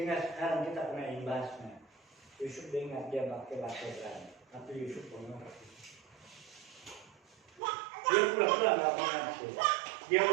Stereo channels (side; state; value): left; drops out; at 7.6 s